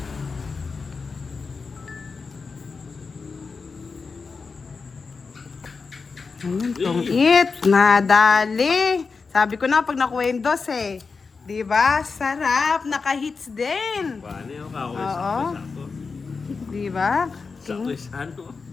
Ayun, tong it. Nadali. Sabi ko na, pag nakuha yung dos eh. Diba? Sarap. Naka-hits din. Paano yung kako? Oo. Sakto. Diba? Sakto is ano.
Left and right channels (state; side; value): quieter; right; 4.7 dB